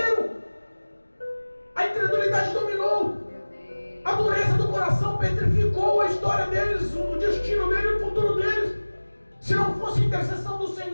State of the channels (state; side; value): inverted; both; correlation -1.00